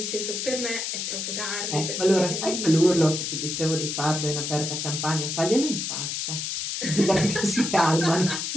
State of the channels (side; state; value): left; noise; hiss, 3 dB below the sound